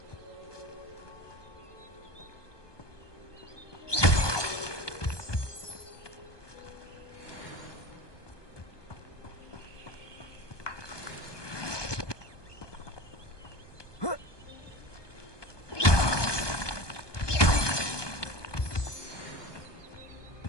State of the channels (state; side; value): late; right; 1.2 ms